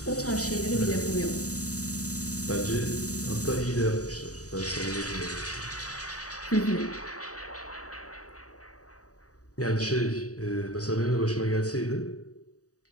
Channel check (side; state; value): right; late; 0.66 ms